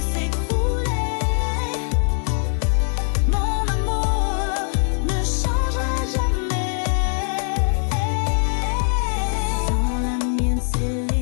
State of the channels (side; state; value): right; silent; digital silence